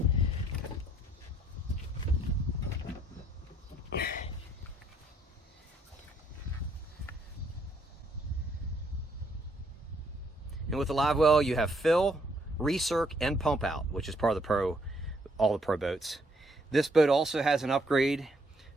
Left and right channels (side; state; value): both; normal; correlation 0.69